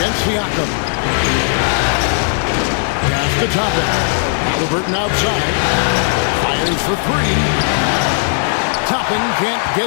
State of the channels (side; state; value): right; silent; 69 dB below the other